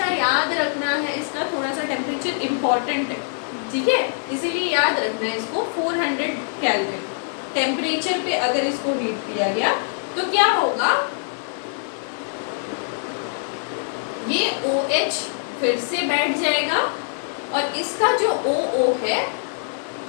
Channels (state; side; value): silent; right; 63 dB below the other